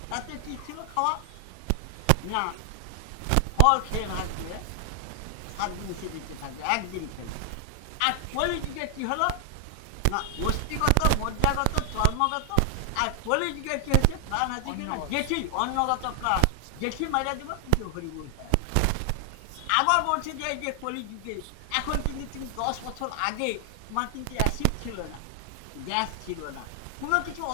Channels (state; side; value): different; both; correlation 0.00